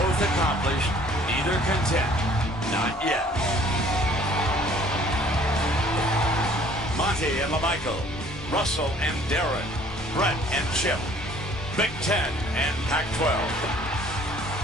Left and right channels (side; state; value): both; normal; correlation 0.55